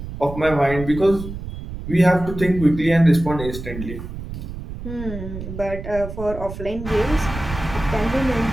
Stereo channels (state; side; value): noise; right; rumble, 9 dB below the sound